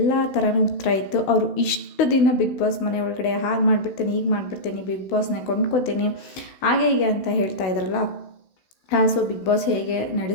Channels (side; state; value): right; late; 16 ms